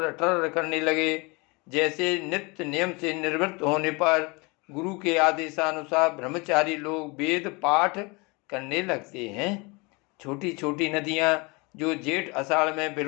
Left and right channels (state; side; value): quieter; right; 27.4 dB